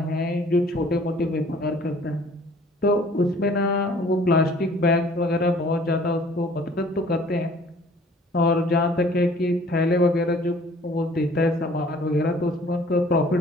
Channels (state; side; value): normal; both; correlation 0.54